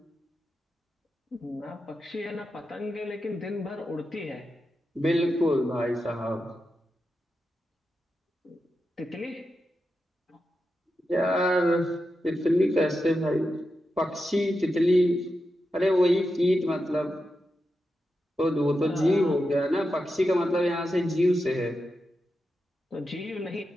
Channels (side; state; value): both; normal; correlation 0.89